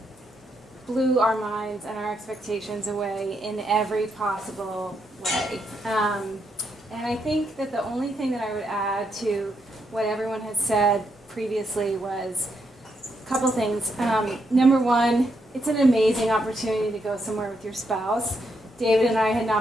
blew our minds and our expectations away in every possible way. And I think that the only thing that I would add to what everyone has said previously was a couple things. Number one, it's an amazing opportunity to go somewhere with your spouse. David and I had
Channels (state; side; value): normal; both; correlation 0.79